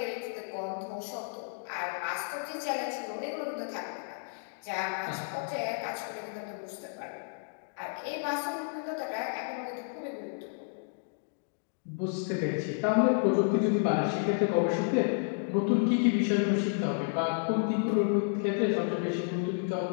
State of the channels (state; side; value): silent; right; digital silence